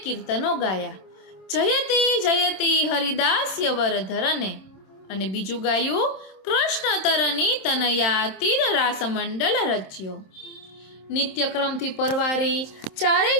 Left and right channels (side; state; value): right; late; 26 ms